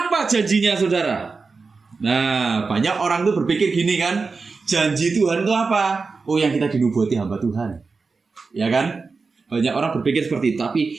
janjinya, saudara? Nah, banyak orang tuh berpikir gini kan, janji Tuhan itu apa? Oh, yang kita dinubuati hamba Tuhan. Ya kan? Banyak orang berpikir seperti itu, tapi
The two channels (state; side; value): quieter; left; 4.4 dB